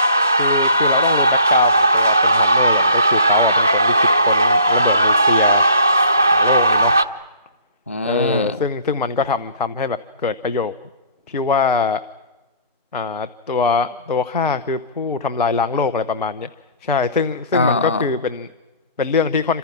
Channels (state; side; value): inverted; both; correlation -0.51